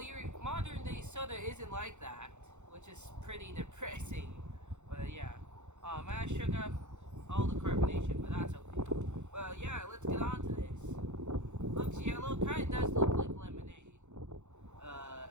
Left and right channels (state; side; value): late; left; 0.83 ms